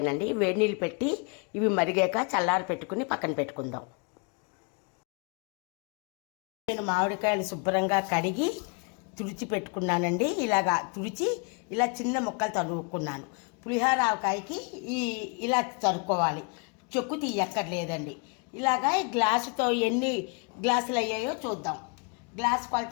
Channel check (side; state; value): right; quieter; 34.4 dB